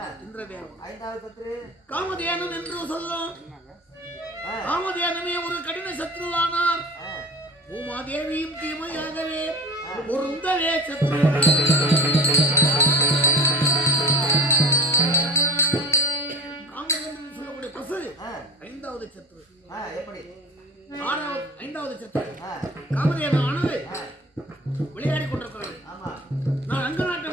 இந்திரதேவன். ஐந்தாவது சத்ரு காமதேனு என்று சொல்லும். காமதேனுமே ஒரு கடின சத்ருவானார். பூமாதேவியும் தீமையாகவே பொருந்தவே சத்ரு. காமதேனு சொல்லக்கூடிய பசு ஐந்தாவது சத்ரு. எப்படி ஐந்தாவது சத்ரு காமதேவனானது விளையாடி கொண்டிருக்கிறது. நான் அங்க நாட்டை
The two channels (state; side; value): normal; both; correlation 0.37